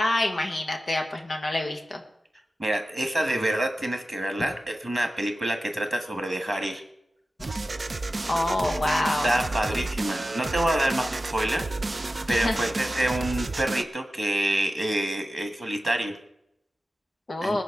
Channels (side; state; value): both; normal; correlation 0.94